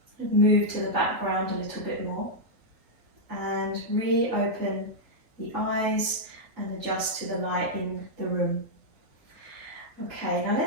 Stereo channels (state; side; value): late; left; 3.8 ms